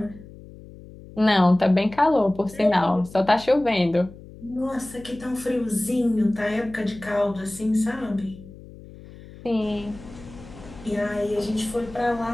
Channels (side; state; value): left; noise; hum, 18 dB below the sound